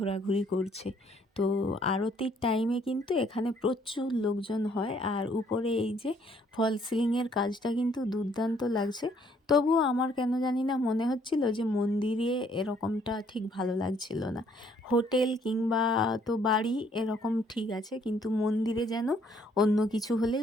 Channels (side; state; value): both; normal; correlation 0.65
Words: করছে। তো আরতির টাইমে কিন্তু এখানে প্রচুর লোকজন হয়। আর উপরে এই যে ফল সিলিংয়ের কাজটা কিন্তু দুর্দান্ত লাগছে। তবুও আমার কেন জানি না মনে হচ্ছিল যে মন্দিরে এরকমটা ঠিক ভালো লাগছিল না। হোটেল কিংবা তো বাড়ি এরকম ঠিক আছে, কিন্তু মন্দিরে যেন অন্য কিছু হলেই